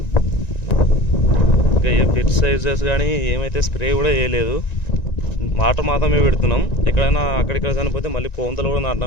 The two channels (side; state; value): right; late; 1.9 ms